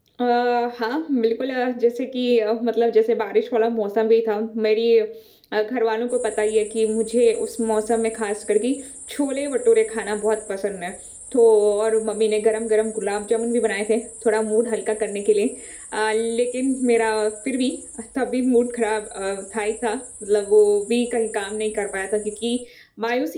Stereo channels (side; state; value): both; identical; correlation 1.00